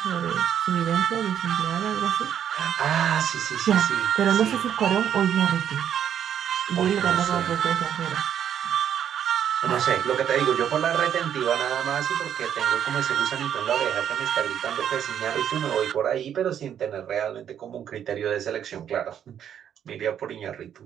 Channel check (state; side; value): quieter; left; 9.3 dB